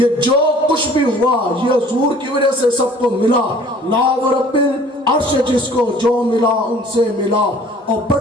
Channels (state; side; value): normal; both; correlation 0.52